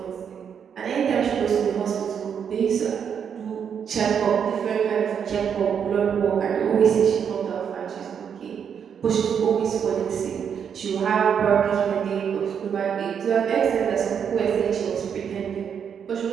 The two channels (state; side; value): quieter; left; 7.6 dB